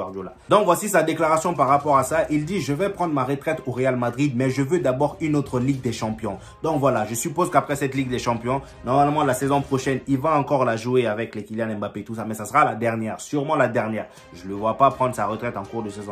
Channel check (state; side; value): identical; both; correlation 1.00